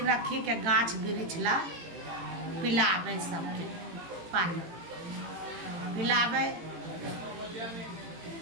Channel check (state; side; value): late; left; 18 ms